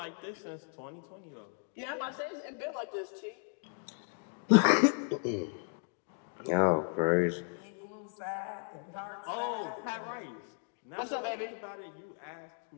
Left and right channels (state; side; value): silent; right; 54 dB below the other